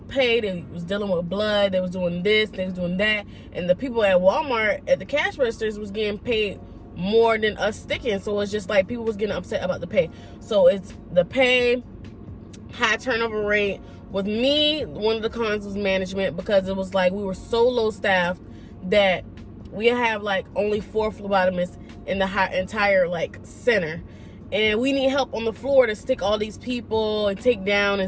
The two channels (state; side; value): identical; both; correlation 1.00